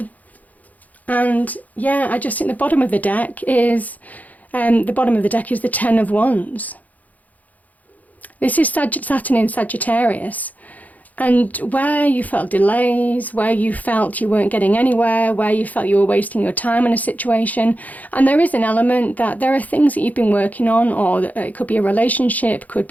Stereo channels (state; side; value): late; right; 0.078 ms